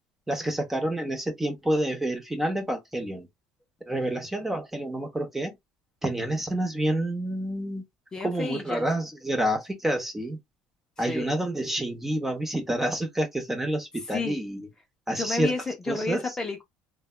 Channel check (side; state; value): both; normal; correlation 0.86